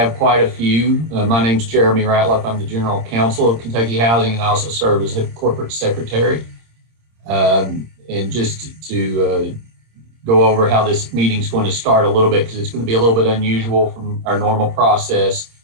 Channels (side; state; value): left; late; 26 ms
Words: quite a few, my name's Jeremy Ratliff. I'm the General Counsel of Kentucky Housing, and I also serve as the Corporate Secretary. And just to go over how this meeting's going to start a little bit, because it's going to be a little bit unusual from our normal process.